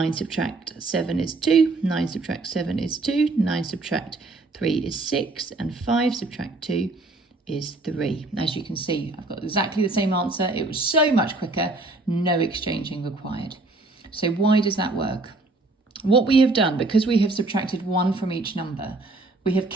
subtract 7 is 2, 9 subtract 7 is 2, 9 subtract 3 is 6, and 5 subtract 2 is 3. As you can see, I've got exactly the same answer. It was so much quicker, no exchanging required. So why does that work? What we have done, because we have subtracted 1 from each number, we have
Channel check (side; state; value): left; quieter; 3.2 dB